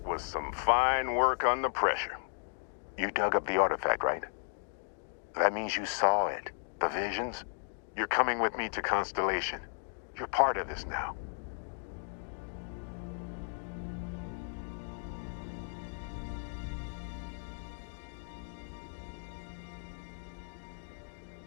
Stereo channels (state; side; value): silent; right; digital silence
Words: was some fine work under pressure. You dug up the artifact, right? That means you saw it. The visions? You're coming with me to Constellation. You're part of this now.